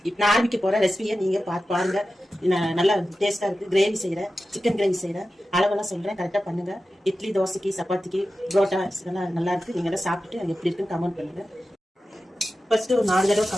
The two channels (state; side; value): normal; both; correlation 0.93